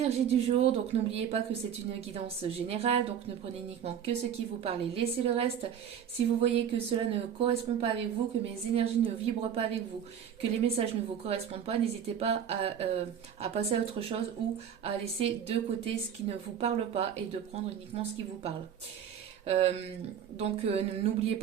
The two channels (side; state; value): left; quieter; 8.6 dB